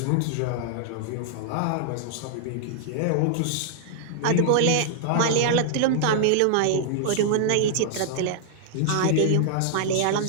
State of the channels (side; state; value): both; different; correlation -0.01